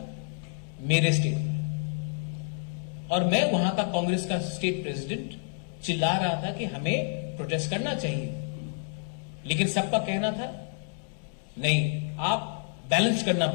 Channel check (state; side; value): silent; right; digital silence